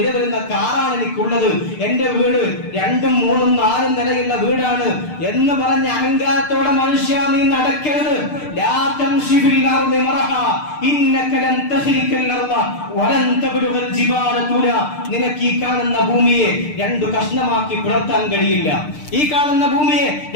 വരുന്ന കാറാണ് എനിക്കുള്ളത്, എന്റെ വീട് 2ഉം 3ഉം 4ഉം നിലയുള്ള വീടാണ് എന്ന് പറഞ്ഞ അഹങ്കാരത്തോടെ മനുഷ്യ നീ നടക്കരുത്. ലാ തംശി ഫിൽ അർളി മറഹ ഇന്നക ലൻ തഖ്രിഖൽ അർള വലൻ തബ്ലുഗൽ ജിബാല തുല. നിനക്ക് ഈ കാണുന്ന ഭൂമിയെ 2 കഷ്ണമാക്കി പിളർത്താൻ കഴിയില്ല. ഈ കാണുന്ന ഭൂമിയെ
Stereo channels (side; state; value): right; late; 6.7 ms